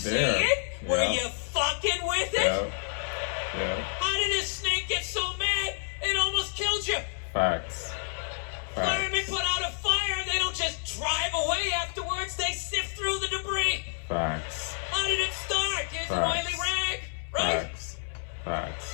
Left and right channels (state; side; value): silent; right; 59 dB below the other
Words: there? it? Yeah. Were you fucking with it? Yeah. How did this snake get so mad it almost killed you? Facts. Firemen put out a fire, they don't just drive away afterwards, they sift through the debris. Facts. How did it start? Here's an oily rag, right?